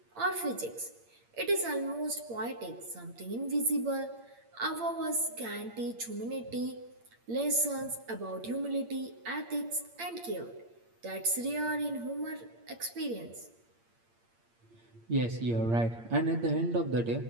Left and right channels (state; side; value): late; left; 8.7 ms